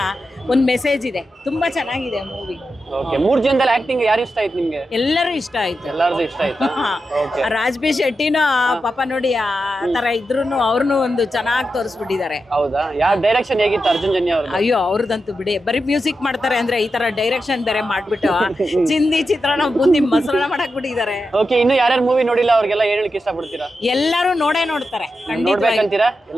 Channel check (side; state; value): both; normal; correlation 0.89